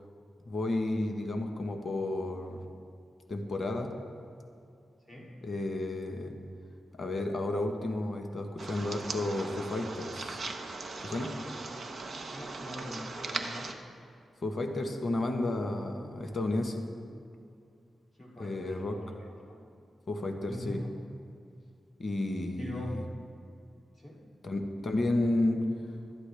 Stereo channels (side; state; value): both; normal; correlation 0.90